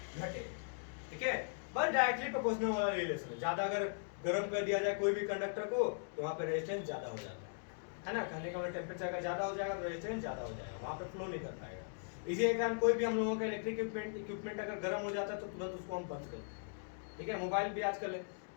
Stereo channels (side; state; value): right; silent; digital silence